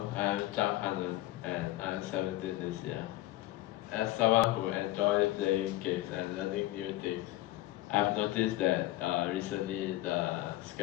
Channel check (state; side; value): quieter; right; 16.7 dB